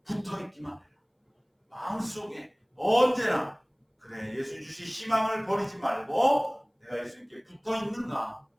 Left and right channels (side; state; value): both; identical; correlation 1.00